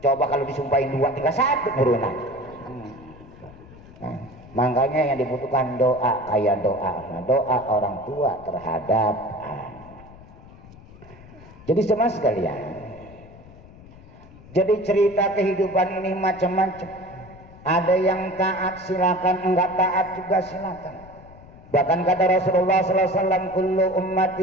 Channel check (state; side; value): noise; left; rumble, 20 dB below the sound